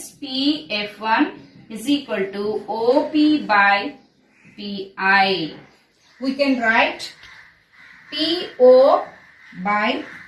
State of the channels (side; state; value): both; identical; correlation 1.00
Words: PF1 is equal to OP by PI. We can write PO by